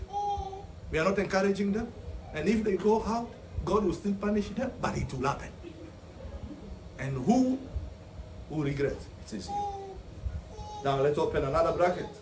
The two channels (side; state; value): both; identical; correlation 1.00